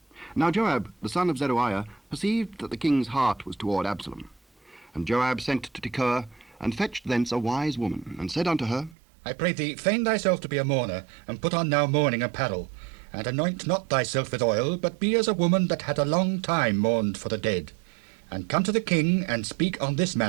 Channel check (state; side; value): drops out; left; at 9.0 s